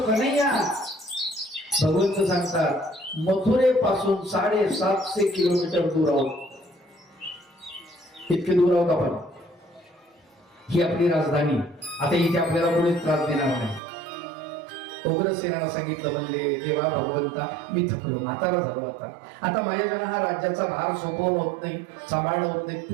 कन्हैया. भगवंत सांगतात मथुरेपासून 750 किलोमीटर दूर आहोत. इतके दूर आहोत आपण. ही आपली राजधानी. आता इथे आपल्याला कोणीच त्रास देणार नाही. उग्रसेनाला सांगितलं, म्हणले देवा भगवंता मी थकलो, म्हातारा झालो. आता माझ्याकडे हा राज्याचा भार सोपवणं होत नाही, सांभाळणं होत नाही.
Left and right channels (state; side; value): drops out; left; at 13.8 s